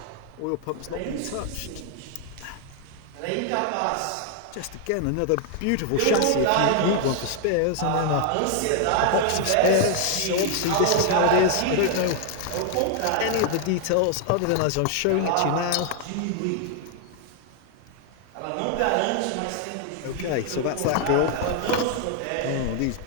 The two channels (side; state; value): both; different; correlation 0.00